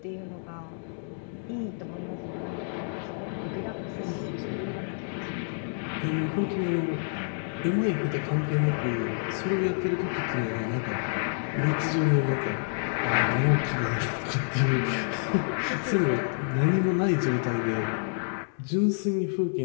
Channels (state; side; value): silent; right; digital silence